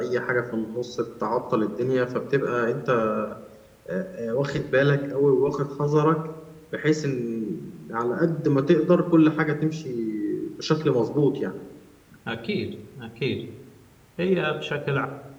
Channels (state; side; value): identical; both; correlation 1.00